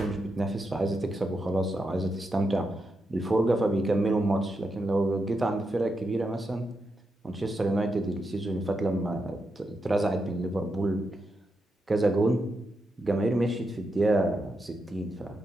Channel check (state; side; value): normal; both; correlation 0.85